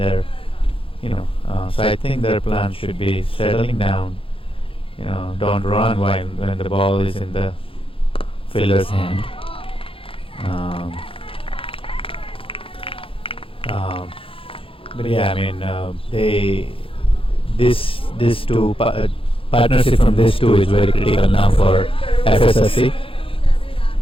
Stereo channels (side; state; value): right; late; 0.26 ms